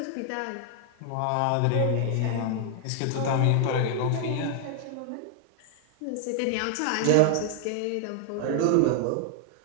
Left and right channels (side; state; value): both; different; correlation 0.00